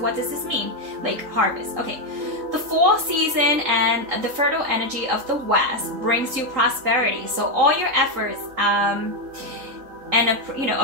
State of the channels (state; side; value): late; left; 3.8 ms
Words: does this mean? Lake, harvest. Okay. The fall season and the fertile energy of the West brings you prosperity. So all your efforts and you know,